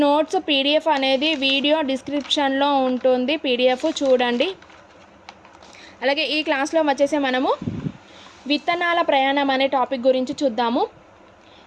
నోట్స్ పీడిఎఫ్ అనేది వీడియో డిస్క్రిప్షన్లో ఉంటుంది, పీడిఎఫ్ చూడండి. అలాగే ఈ క్లాస్లో వచ్చేసి మనము విత్తనాల ప్రయాణం అనే టాపిక్ గురించి చూద్దాము.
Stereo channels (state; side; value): identical; both; correlation 1.00